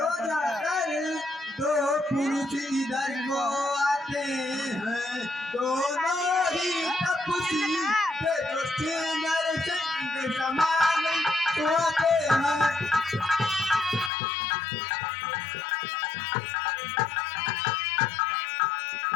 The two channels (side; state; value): right; drops out; at 14.1 s